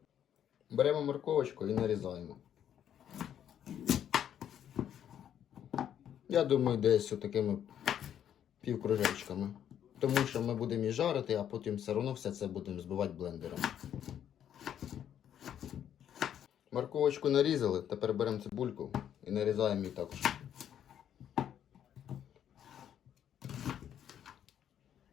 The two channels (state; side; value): quieter; right; 9.8 dB